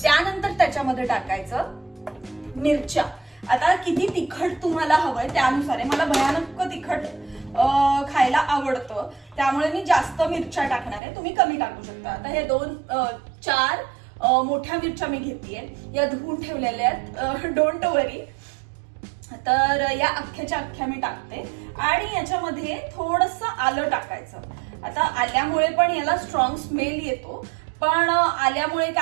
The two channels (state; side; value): drops out; left; at 11.0 s